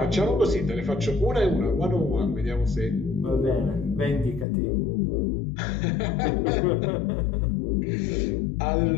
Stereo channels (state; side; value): drops out; right; at 4.5 s